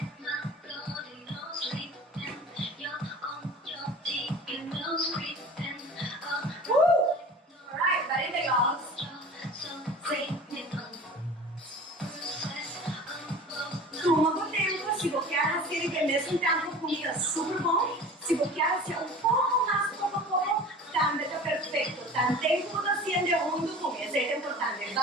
Alright, barriga, y'all. Toma com tempo, se você quer aquele que mesmo tempo comida super bom, se você quer ser um pouco mais pouco a pouco, também está perfeito. Tanto tempo da sendo junto com isso é importante.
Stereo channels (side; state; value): both; normal; correlation 0.39